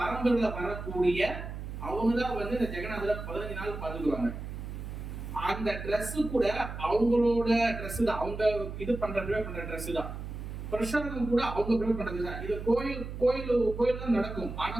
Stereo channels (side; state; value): right; noise; hum, 8 dB below the sound